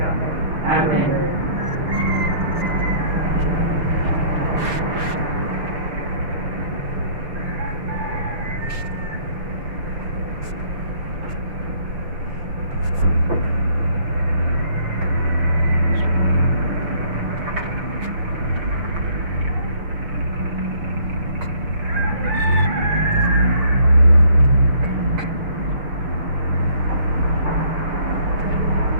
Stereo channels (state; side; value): late; left; 6.3 ms